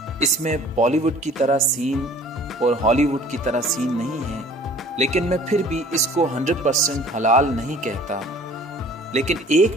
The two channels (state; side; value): normal; both; correlation 0.51